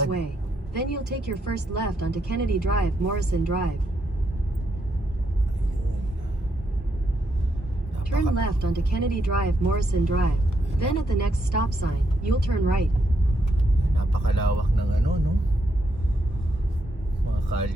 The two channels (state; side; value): normal; both; correlation 0.78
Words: Way. Then you'll take your first left onto Kennedy Drive, Morrison Drive. Turn left onto Kennedy Drive, Morrison Drive. Then at the next stop sign, you'll turn right. Napakalawak ng no? Mga